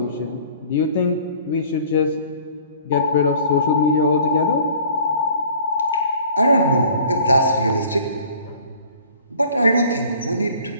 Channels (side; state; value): both; inverted; correlation -0.50